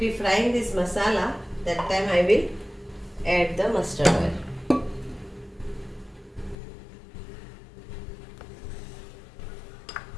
frying this masala, that time I will add the mustard oil.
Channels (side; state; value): right; drops out; at 6.6 s